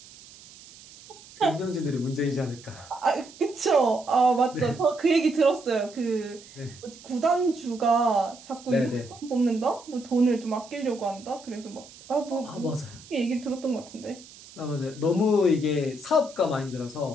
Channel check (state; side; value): noise; right; hiss, 20 dB below the sound